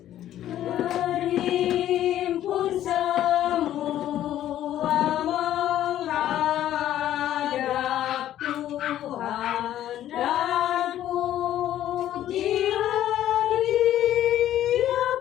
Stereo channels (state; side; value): quieter; right; 12.2 dB